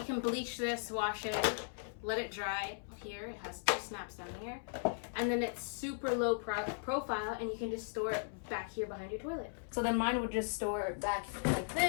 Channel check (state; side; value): silent; right; 53 dB below the other